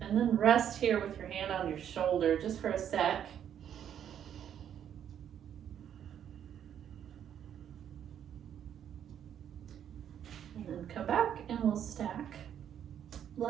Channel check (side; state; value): left; quieter; 9.4 dB